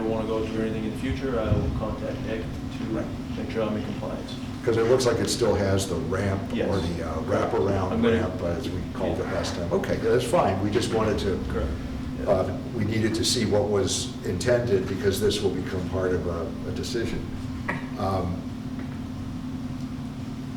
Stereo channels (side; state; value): both; identical; correlation 1.00